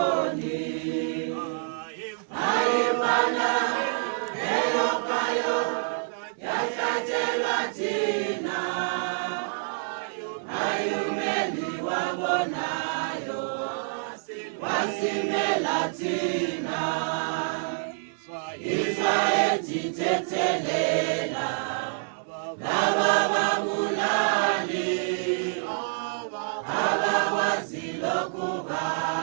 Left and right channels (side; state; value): left; silent; 60 dB below the other